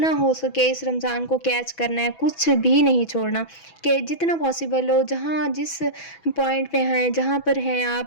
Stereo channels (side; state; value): right; late; 6.1 ms